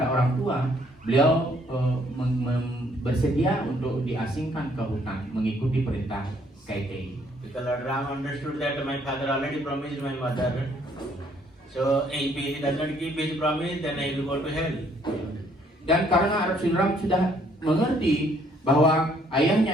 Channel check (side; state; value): both; normal; correlation 0.65